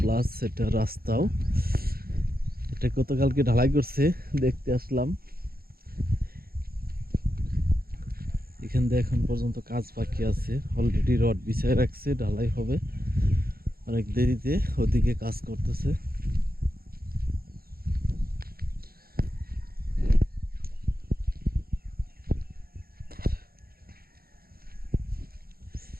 এটা রাস্তাও। এটা গতকালকে ঢালাই করছে, দেখতে আসলাম। এখান দিয়ে এখন পর্যন্ত কাজ বাকি আছে, অলরেডি রড বিছায় রাখছে, ঢালাই হবে অনেক দেরিতে। ওদিকে কাজ করতেছে।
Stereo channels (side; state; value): left; late; 0.44 ms